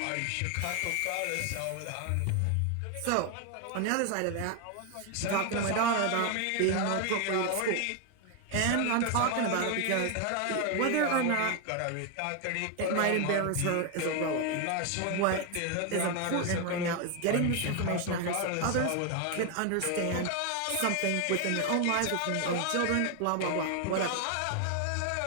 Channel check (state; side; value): different; both; correlation 0.01